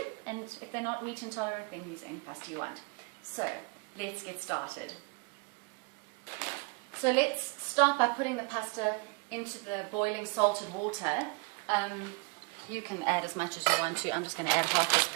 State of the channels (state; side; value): quieter; left; 29.6 dB